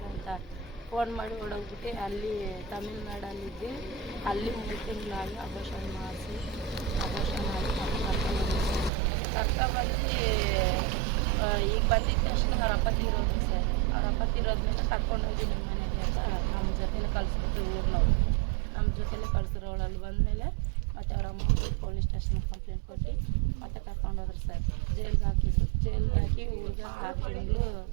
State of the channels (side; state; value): left; drops out; at 8.9 s